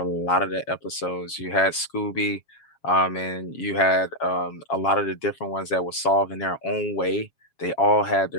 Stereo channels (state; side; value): late; right; 7.3 ms